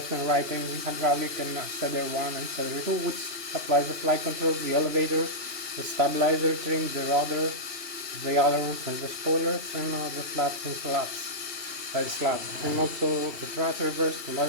and right engine hydraulic, and Cedar 1 and Cedar 2, which applies the flight controls, the elevators, the stabilizer trim, the rudder, the ailerons and the spoilers, and the flaps and slats. Slats, and also the thrust reverse, the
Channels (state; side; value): late; left; 3.0 ms